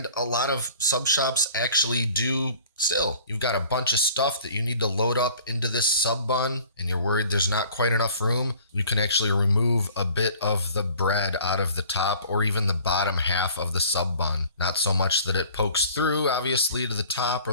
a lot of sub shops actually do Still, you've got a bunch of stuff that you need to load up into this sub bun and you're worried there's not quite enough room, you can actually remove a bit of the bread out of the top or even the bottom half of the sub bun. Not so much that it pokes through, obviously, to the top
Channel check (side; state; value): both; inverted; correlation -0.50